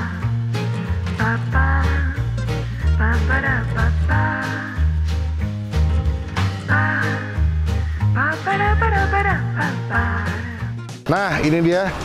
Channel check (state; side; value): identical; both; correlation 1.00